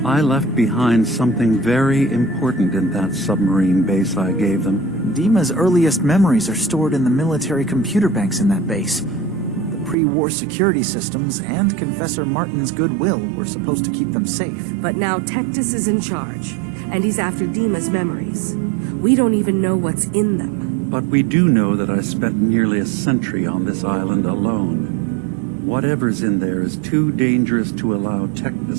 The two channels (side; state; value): left; drops out; at 10.0 s